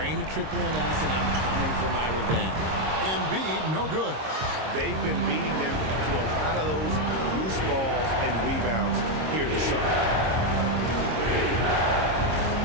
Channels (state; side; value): late; left; 26 ms